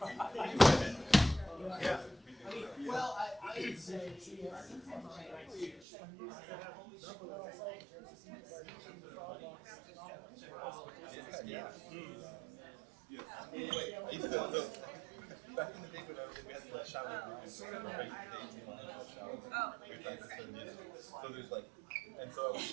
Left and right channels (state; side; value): drops out; left; at 5.9 s